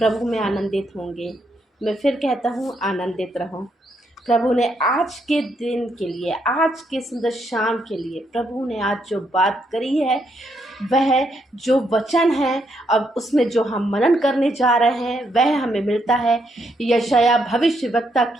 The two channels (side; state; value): both; normal; correlation 0.76